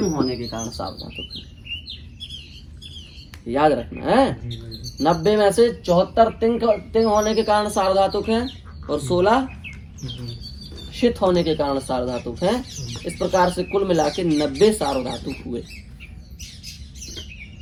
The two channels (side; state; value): both; identical; correlation 1.00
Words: होने के कारण सार्वधातुक है। याद रखना है, 90 में से 74 तिंग होने के कारण सार्वधातुक है, और 16 शित होने के कारण सार्वधातुक है। इस प्रकार से कुल मिला के 90 सार्वधातुक हुए।